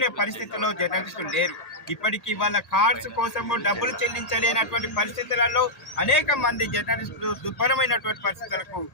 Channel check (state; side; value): late; right; 1.8 ms